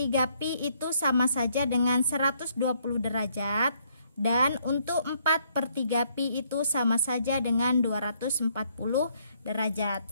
pi itu sama saja dengan 120 derajat, dan untuk 4/3 pi itu sama saja dengan 240 derajat.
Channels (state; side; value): inverted; both; correlation -0.69